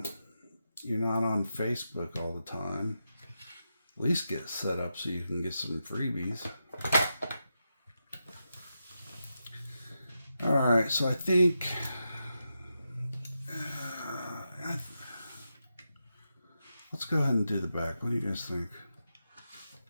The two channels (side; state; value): both; inverted; correlation -0.87